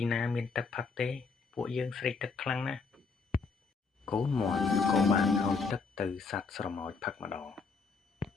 ណាមានទឹកផឹកទេពួកយើងស្រេកទឹកខ្លាំងណាស់កូនមាន់ក៏បានឲ្យទឹកទៅសត្វស្រមោចផឹកម្ដង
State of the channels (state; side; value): quieter; right; 4.7 dB